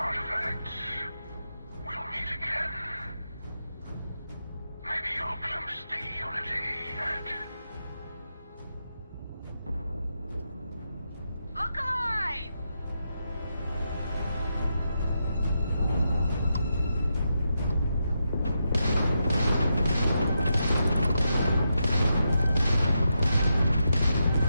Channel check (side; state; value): both; inverted; correlation -0.85